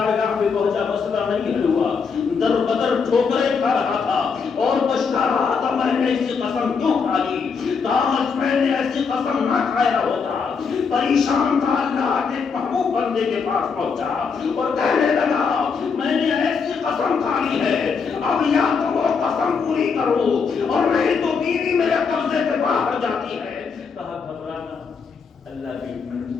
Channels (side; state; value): right; quieter; 5.5 dB